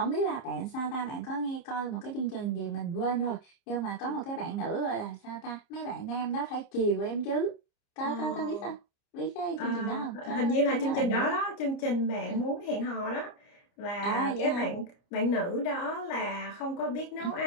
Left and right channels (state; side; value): late; right; 30 ms